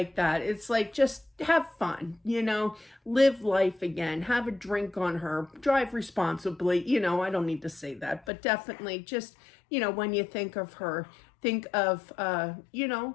that. It's like, just have fun, live life again, have a drink on her, drive responsibly, I don't need to say that, but definitely just, when you think of her, think of,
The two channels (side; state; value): right; drops out; at 8.2 s